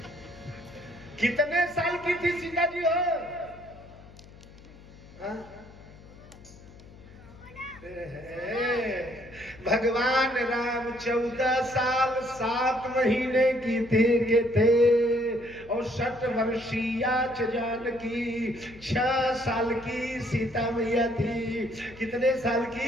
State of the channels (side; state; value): left; noise; hum, 20 dB below the sound